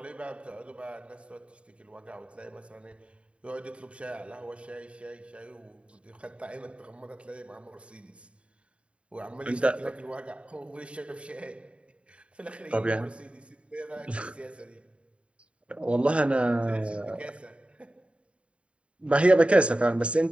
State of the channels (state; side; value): late; left; 0.060 ms